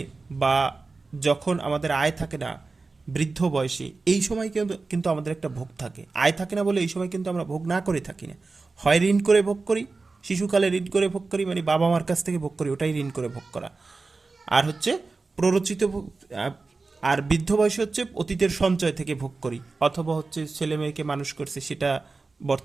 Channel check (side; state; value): left; quieter; 3.9 dB